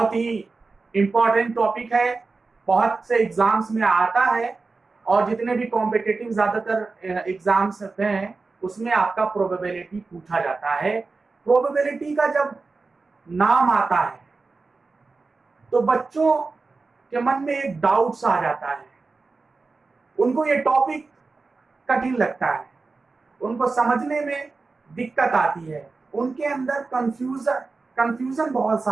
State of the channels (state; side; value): quieter; left; 4.0 dB